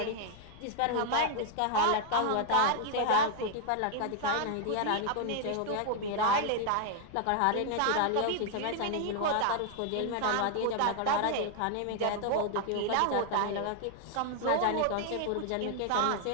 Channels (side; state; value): both; different; correlation 0.00